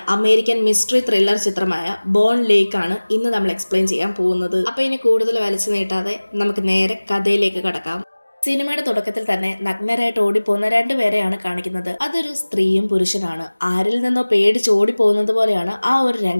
അമേരിക്കൻ മിസ്റ്ററി ത്രില്ലർ ചിത്രമായ ബോൺ ലേക്ക് ആണ് ഇന്ന് നമ്മൾ എക്സ്പ്ലെയിൻ ചെയ്യാൻ പോകുന്നത്. അപ്പൊ ഇനി കൂടുതൽ വലിച്ചു നീട്ടാതെ നമുക്ക് നേരെ കഥയിലേക്ക് കടക്കാം. സിനിമയുടെ തുടക്കത്തിൽ തന്നെ നഗ്നരായിട്ട് ഓടിപ്പോകുന്ന രണ്ടുപേരെയാണ് കാണിക്കുന്നത്. അതൊരു സ്ത്രീയും പുരുഷനാണ്. ആരിൽ നിന്നോ പേടിച്ച് ഓടിപ്പോകുന്നത് പോലെയാണ് ആ ഒരു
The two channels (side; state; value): both; inverted; correlation -1.00